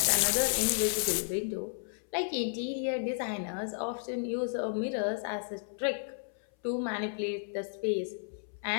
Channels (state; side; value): silent; right; 56 dB below the other